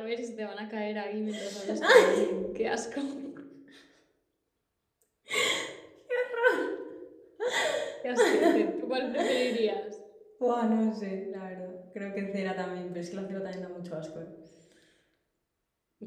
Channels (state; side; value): identical; both; correlation 1.00